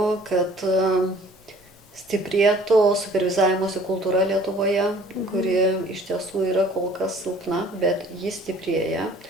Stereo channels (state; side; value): normal; both; correlation 0.53